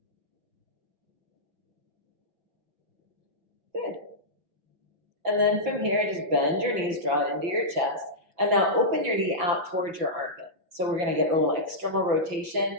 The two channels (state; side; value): late; left; 6.0 ms